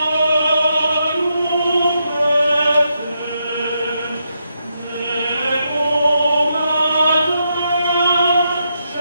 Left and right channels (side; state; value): both; inverted; correlation -0.81